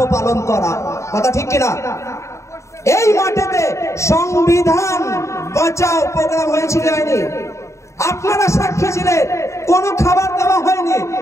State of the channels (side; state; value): right; late; 0.14 ms